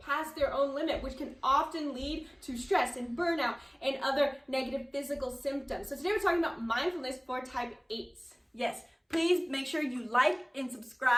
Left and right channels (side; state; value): both; identical; correlation 1.00